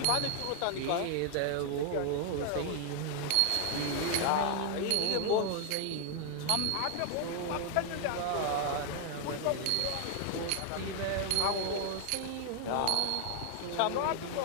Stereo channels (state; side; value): different; both; correlation 0.00